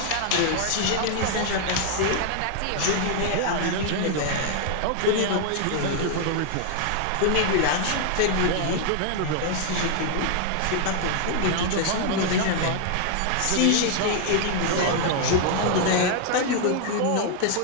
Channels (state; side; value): different; both; correlation 0.00